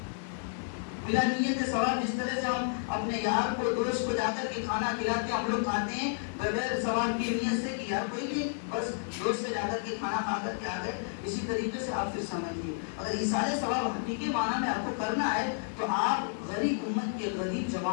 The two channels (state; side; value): silent; right; digital silence